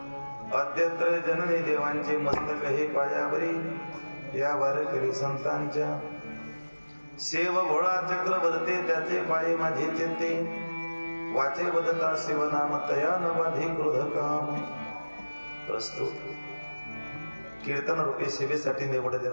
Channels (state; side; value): inverted; both; correlation -1.00